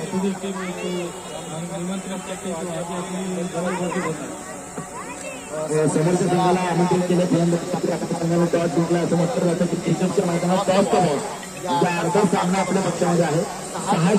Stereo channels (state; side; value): identical; both; correlation 1.00